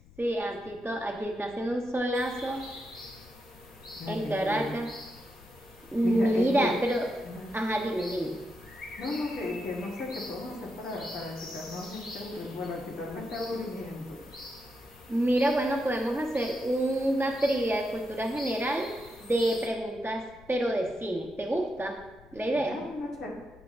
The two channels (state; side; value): noise; left; rumble, 23 dB below the sound